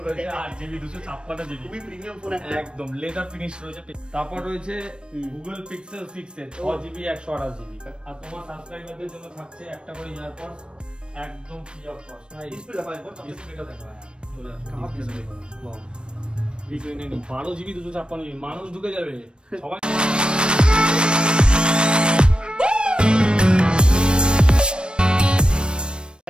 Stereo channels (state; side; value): late; left; 0.054 ms